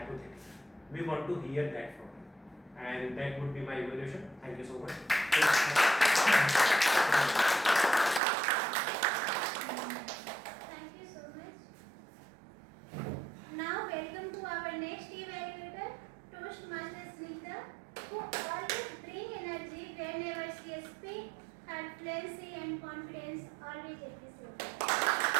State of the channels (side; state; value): left; drops out; at 8.2 s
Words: We want to hear that from you. And that would be my evaluation. Thank you so much. Thank you so much. Now welcome to our next evaluator, Toastmaster Snigdha, who always bring energy whenever she speaks. Her fluency and confidence always appreciated.